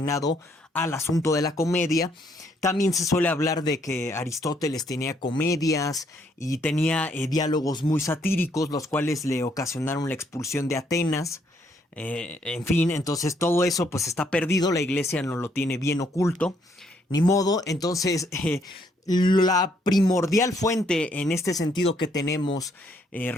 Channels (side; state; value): both; normal; correlation 0.70